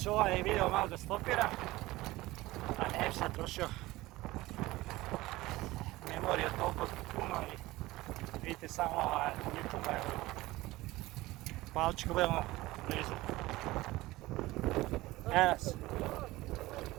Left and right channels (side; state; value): left; quieter; 18.8 dB